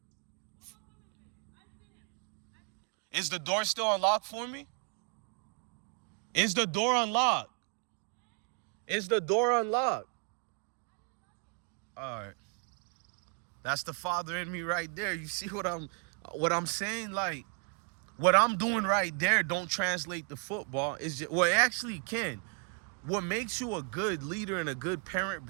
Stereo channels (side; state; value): left; quieter; 34.5 dB